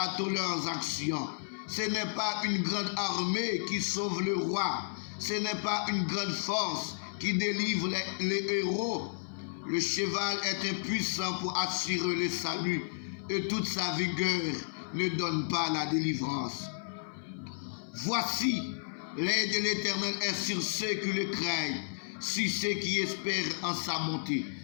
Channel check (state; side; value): silent; right; 56 dB below the other